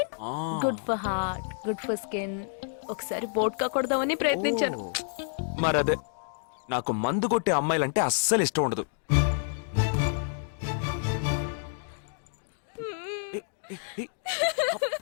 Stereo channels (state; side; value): silent; right; digital silence